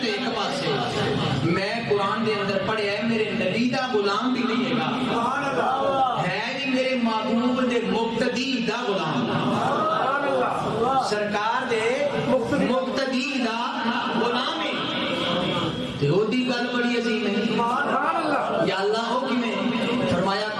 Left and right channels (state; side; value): identical; both; correlation 1.00